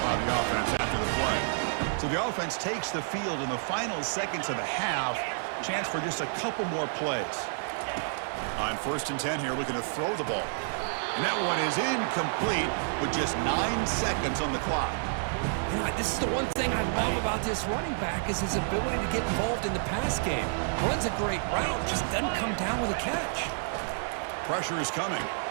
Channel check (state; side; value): silent; left; digital silence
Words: by the offense after the play. So the offense takes the field in the final seconds of the half. Chance for just a couple more plays. On 1st and 10 here, looking to throw the ball. And that one is incomplete with just 9 seconds on the clock. You know, this is the one thing I love about this running back is his ability to get involved in the pass game. Runs a great route, just doesn't come down with a catch. Pressure is coming.